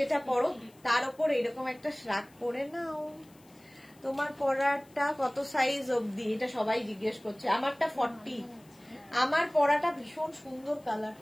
পরো তার উপর এরকম একটা শ্রাগ করে নাও। তোমার পরাটা কত সাইজ অবধি, এটা সবাই জিজ্ঞেস করছে। আমারটা 40। আমার পরাটা ভীষণ সুন্দর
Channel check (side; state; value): left; noise; hiss, 29 dB below the sound